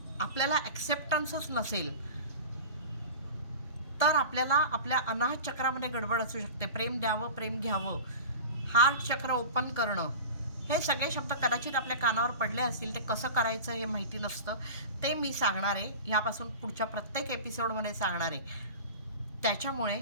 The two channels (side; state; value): both; inverted; correlation -0.32